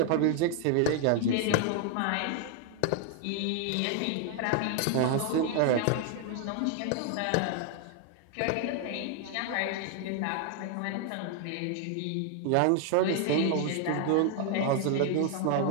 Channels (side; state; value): both; different; correlation 0.00